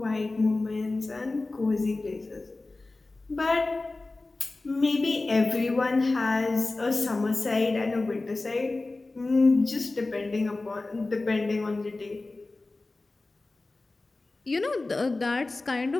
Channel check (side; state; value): right; quieter; 3.2 dB